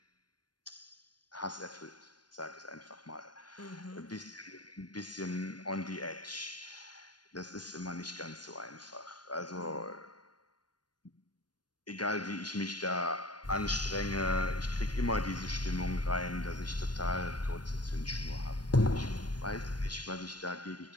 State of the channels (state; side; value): late; right; 0.70 ms